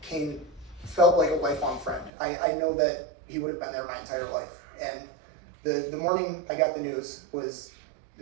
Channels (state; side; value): drops out; left; at 2.1 s